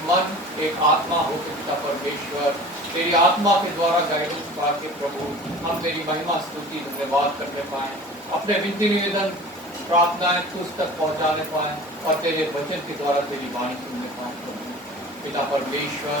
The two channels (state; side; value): normal; both; correlation 0.40